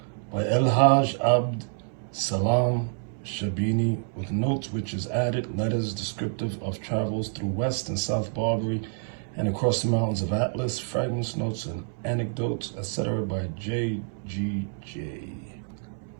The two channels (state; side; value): silent; left; 60 dB below the other